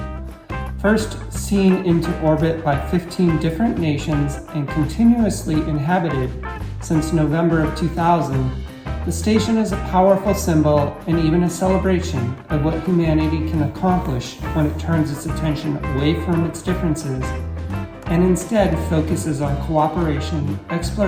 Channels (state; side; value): identical; both; correlation 1.00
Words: First seen into orbit by 15 different nations and continuously inhabited since November of 2000, the station is a powerful symbol and even a celebration of what humanity can accomplish when it turns its attention away from its differences and instead focuses on cooperation,